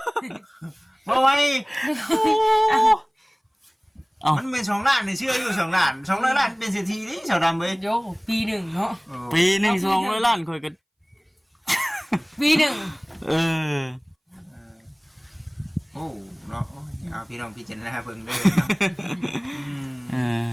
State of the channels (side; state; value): both; identical; correlation 1.00